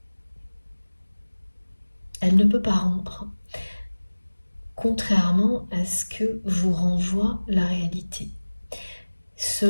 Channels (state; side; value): inverted; both; correlation -1.00